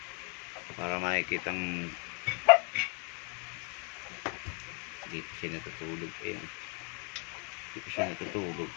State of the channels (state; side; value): quieter; right; 36.3 dB